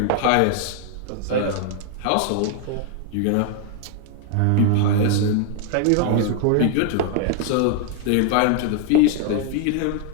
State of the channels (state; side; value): different; both; correlation 0.00